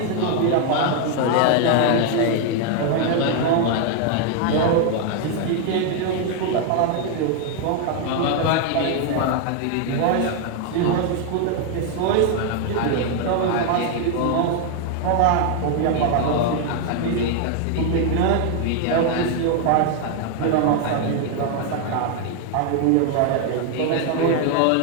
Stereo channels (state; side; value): different; both; correlation 0.01